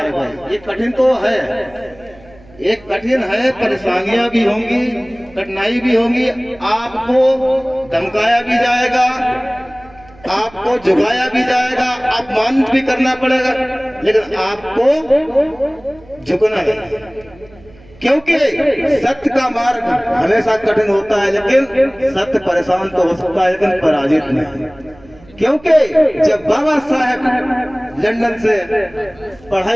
है। ये कठिन तो है, एक कठिन है, परेशानियां भी होंगी, कठिनाई भी होंगी, आपको धमकाया भी जाएगा, आपको झुकाया भी जाएगा, अपमानित भी करना पड़ेगा, लेकिन आपको झुकना नहीं, क्योंकि सत्य का मार्ग हमेशा कठिन होता है, लेकिन सत्य परेशान तो हो सकता है लेकिन पराजित नहीं। क्योंकि जब बाबा साहेब लंदन से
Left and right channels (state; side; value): noise; right; hum, 25 dB below the sound